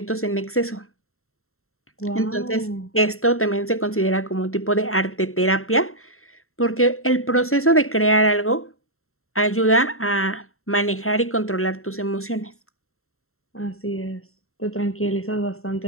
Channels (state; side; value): late; right; 0.62 ms